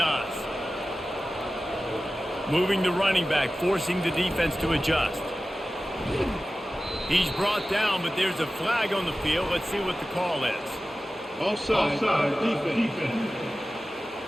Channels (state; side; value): normal; both; correlation 0.95